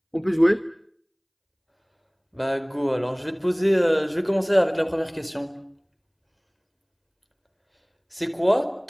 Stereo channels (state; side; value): identical; both; correlation 1.00